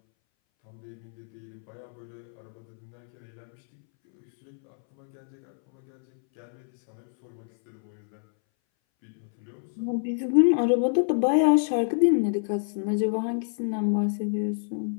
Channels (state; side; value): silent; right; 60 dB below the other